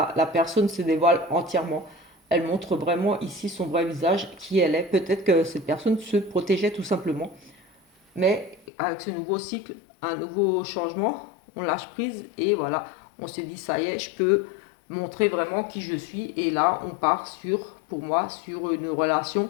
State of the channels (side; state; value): right; drops out; at 8.6 s